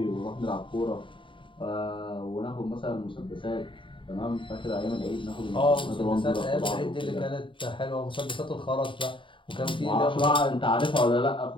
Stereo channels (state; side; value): late; right; 0.24 ms